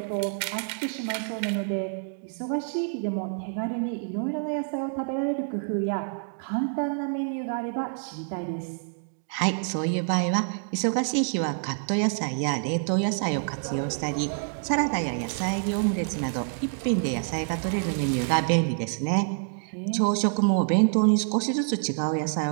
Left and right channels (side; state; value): left; silent; digital silence